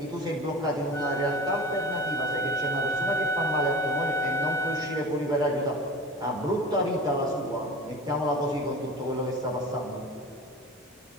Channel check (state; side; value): normal; both; correlation 0.35